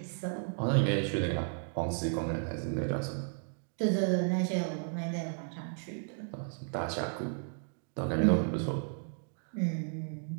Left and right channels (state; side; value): silent; left; 55 dB below the other